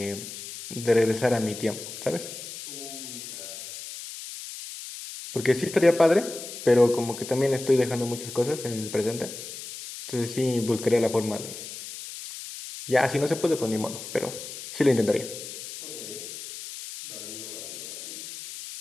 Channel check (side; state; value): left; noise; hiss, 10 dB below the sound